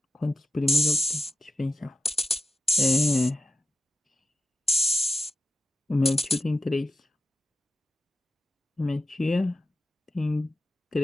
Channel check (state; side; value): normal; both; correlation 0.89